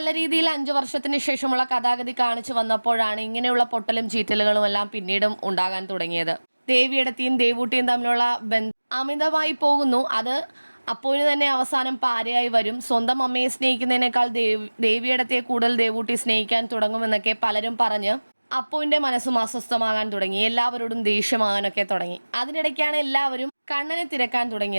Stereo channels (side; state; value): both; inverted; correlation -1.00